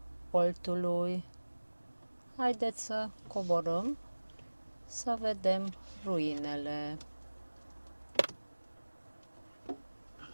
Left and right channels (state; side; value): inverted; both; correlation -1.00